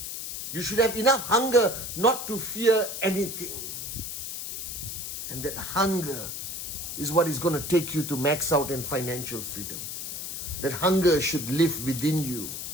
You should have enough hunger not to fear anything. And that hunger is what is going to take you to max out in financial freedom. That hunger should live within you.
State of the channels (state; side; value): noise; left; hiss, 6 dB below the sound